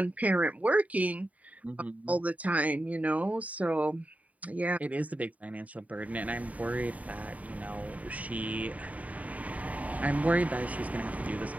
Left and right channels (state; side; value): late; left; 0.070 ms